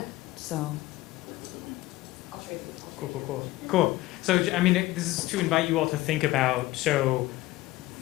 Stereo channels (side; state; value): right; quieter; 17.9 dB